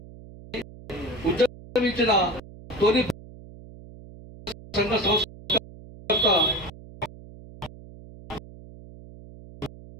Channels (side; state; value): right; noise; hum, 18 dB below the sound